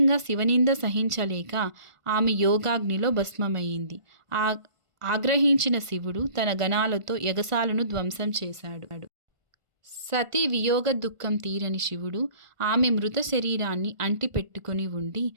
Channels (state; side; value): late; left; 1.4 ms